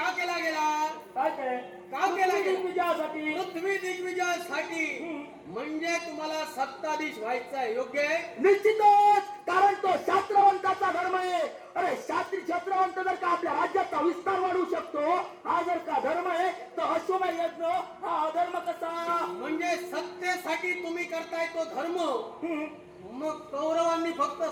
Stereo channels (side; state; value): both; identical; correlation 1.00